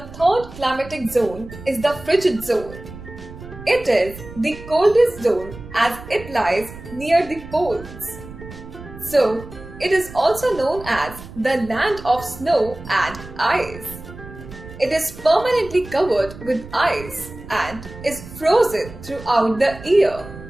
third climatic zone is the frigid zone. It is the coldest zone as it lies near the poles. So, it is also known as the land of snow and ice. It is permanently covered with ice and is frozen throughout the year.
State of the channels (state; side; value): noise; right; rumble, 15 dB below the sound